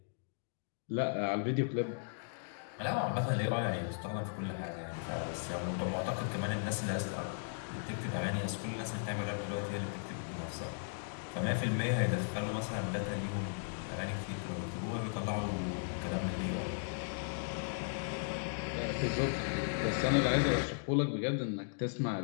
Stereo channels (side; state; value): right; silent; digital silence